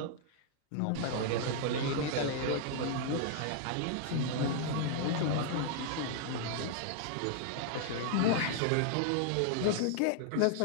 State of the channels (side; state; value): both; different; correlation -0.01